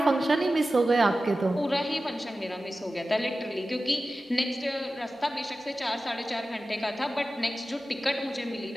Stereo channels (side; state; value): both; normal; correlation 0.94